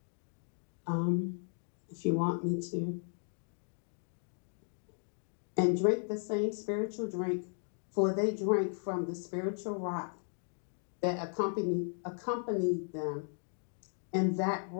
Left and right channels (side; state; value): right; silent; 54 dB below the other